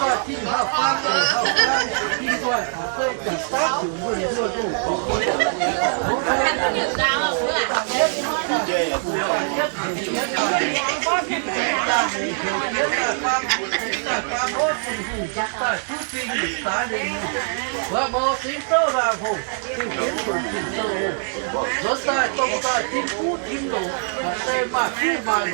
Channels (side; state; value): left; silent; digital silence